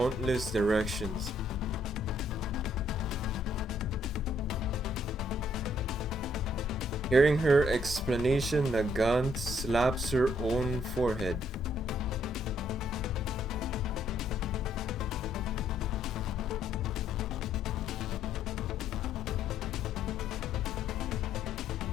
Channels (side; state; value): both; normal; correlation 0.69